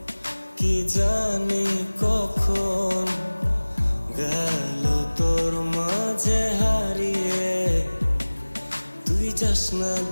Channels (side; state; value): both; inverted; correlation -1.00